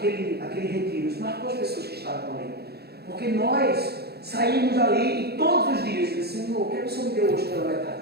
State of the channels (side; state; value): left; late; 0.47 ms